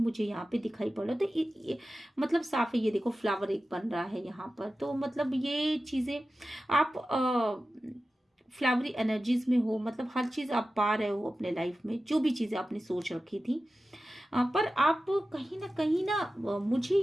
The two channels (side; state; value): both; normal; correlation 0.94